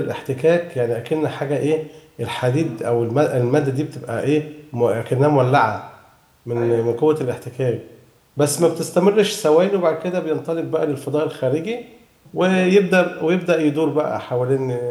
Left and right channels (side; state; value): both; identical; correlation 1.00